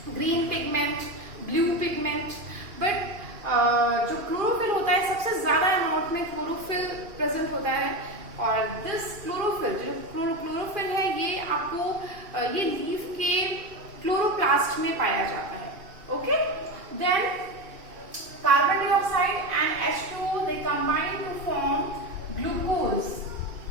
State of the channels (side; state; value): left; late; 2.5 ms